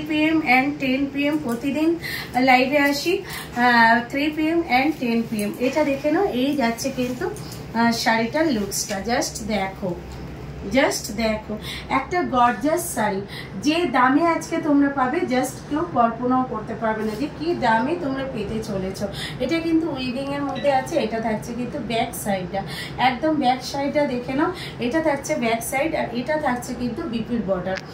PM অ্যান্ড 10 PM প্রতিদিন লাইভে আসি, 3 PM অ্যান্ড 10 PM। এটা দেখে নাও, এই যাচ্ছে কিন্তু শাড়িটার লুকসটা। জাস্ট দেখো একটা গর্জাস শাড়ি, যে দামে আজকে তোমরা পাবে জাস্ট কেউ কল্পনাও করতে পারবে না যে কি দামে তোমরা পেতে চলেছ। এটা কিন্তু উইভিং এর মধ্যে আছে। এটা থাকছে কিন্তু ব্যাক সাইডটা, একদম ব্যাক সাইডটা দেখে নাও, এটা থাকছে ব্যাক সাইড। আর এটা থাকছে কিন্তু বিপির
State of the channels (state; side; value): identical; both; correlation 1.00